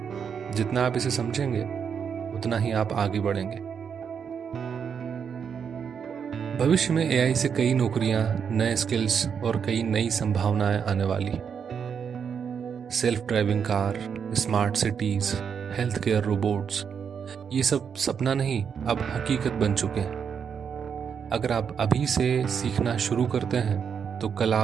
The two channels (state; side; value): quieter; left; 7.0 dB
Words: जितना आप इसे समझेंगे, उतना ही आप आगे बढ़ेंगे। भविष्य में एआई से कई नौकरियां, नए स्किल्स और कई नई संभावनाएं आने वाली। Self driving car, smart cities, health care robots, ये सब सपना नहीं, अब हकीकत बन चुके हैं। अगर आप अभी से सीखना शुरू करते हैं तो कल